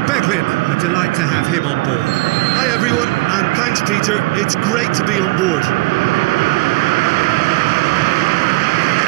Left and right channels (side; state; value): left; quieter; 23.1 dB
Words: Beglin. A delight to have him on board. Hi everyone, and thanks Peter, it's great to be on board.